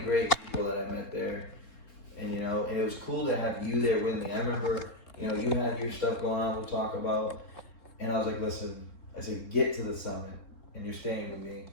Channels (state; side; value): late; right; 3.7 ms